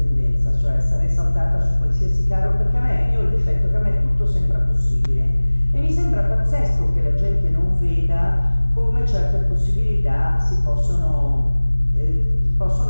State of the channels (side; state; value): both; inverted; correlation -1.00